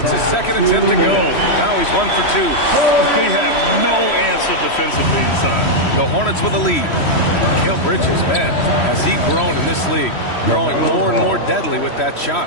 his second attempt to go. Now he's 1 for 2. They have no answer defensively inside. The Hornets with a lead. Mikal Bridges, man, has he grown in this league? Growing more and more deadly with that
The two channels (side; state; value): right; late; 3.1 ms